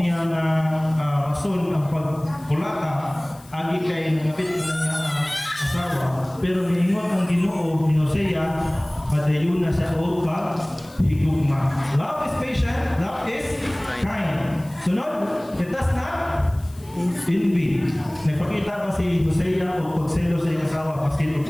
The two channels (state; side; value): noise; left; hiss, 24 dB below the sound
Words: na rason ang pagkulata, agi kay nangapit na niya ang asawa. Pero niingon ang Ginoo ni Hosea, padayon na sa o higugma. Love is patient, love is kind. Sunod, it does not envy. Nagpakita pa si Hosea o pagselo sa iyang asawa kasi